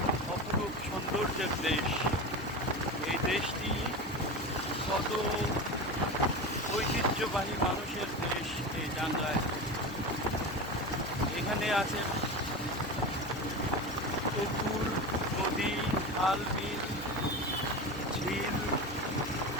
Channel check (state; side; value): normal; both; correlation 0.26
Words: অপরূপ সৌন্দর্যের দেশ। এই দেশটি কত ঐতিহ্যবাহী মানুষের দেশ এই টাঙ্গাইল। এখানে আছে পুকুর, নদী, খাল, বিল, ঝিল,